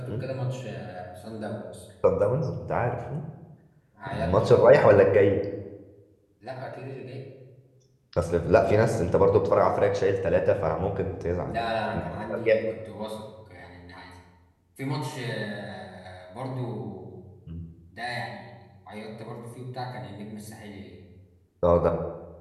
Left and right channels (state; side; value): identical; both; correlation 1.00